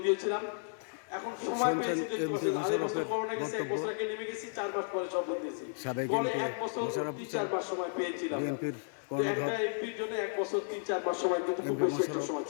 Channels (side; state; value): right; silent; digital silence